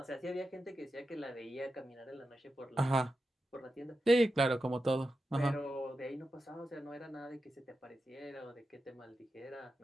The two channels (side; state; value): both; normal; correlation 0.90